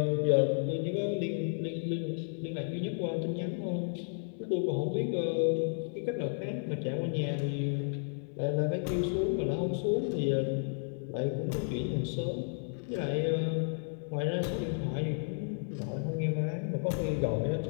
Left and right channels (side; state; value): right; silent; digital silence